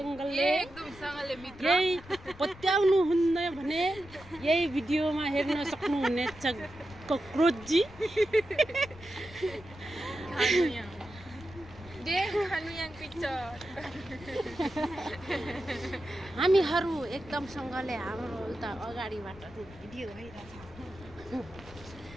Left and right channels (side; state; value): left; noise; rumble, 19 dB below the sound